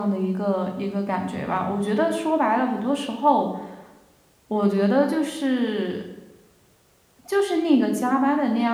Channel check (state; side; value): identical; both; correlation 1.00